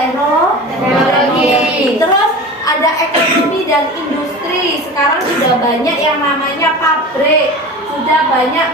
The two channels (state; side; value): normal; both; correlation 0.33